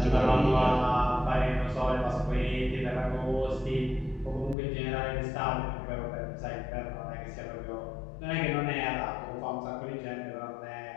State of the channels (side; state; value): right; drops out; at 4.5 s